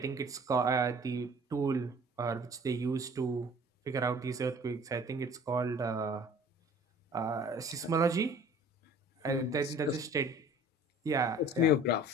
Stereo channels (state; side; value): normal; both; correlation 0.49